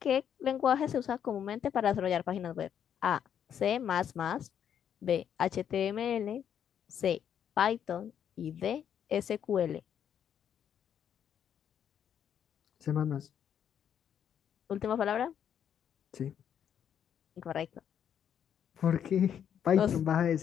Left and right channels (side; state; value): right; quieter; 8.9 dB